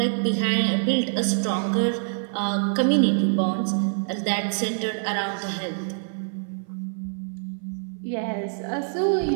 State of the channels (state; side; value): silent; left; 56 dB below the other